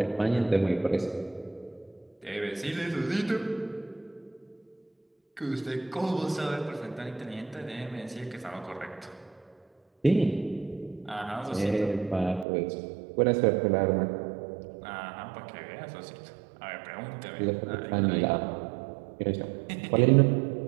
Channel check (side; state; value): left; drops out; at 12.5 s